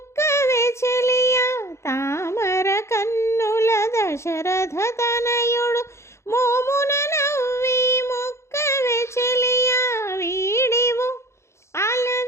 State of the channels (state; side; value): late; right; 0.13 ms